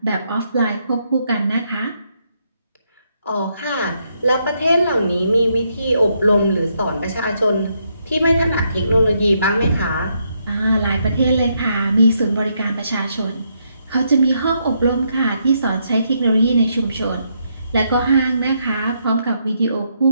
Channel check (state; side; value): inverted; both; correlation -0.77